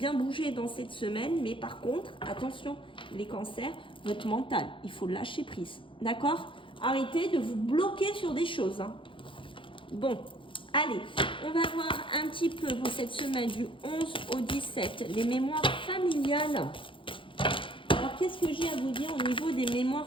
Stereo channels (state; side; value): late; right; 0.25 ms